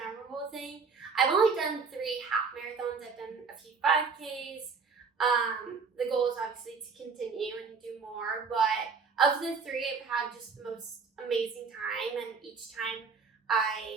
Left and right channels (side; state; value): left; quieter; 5.2 dB